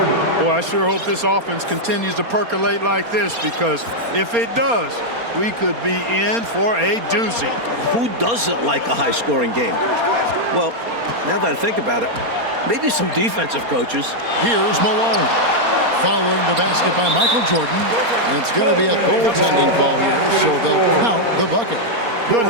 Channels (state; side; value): late; left; 4.3 ms